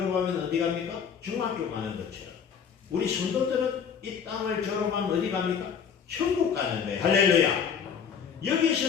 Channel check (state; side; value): quieter; right; 7.1 dB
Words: 어디 갑니까? 중학교 가는 것처럼 우리 성도들은 이 땅을 졸업하면 어디 갑니까? 천국 가는 거예요. 할렐루야.